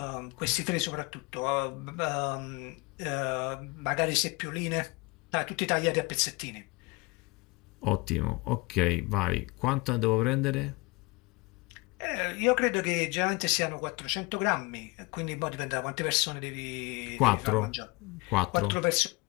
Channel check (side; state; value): right; quieter; 24.9 dB